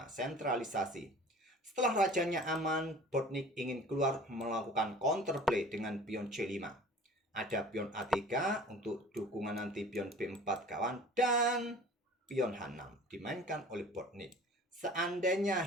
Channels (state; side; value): normal; both; correlation 0.44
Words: sentralisasi. Setelah rajanya aman, Bortnyk ingin keluar melakukan counterplay dengan pion C5. Ada pion A3 untuk dukungan nanti pion B4 kawan, dan pion H6 dimainkan oleh Bortnyk. Seandainya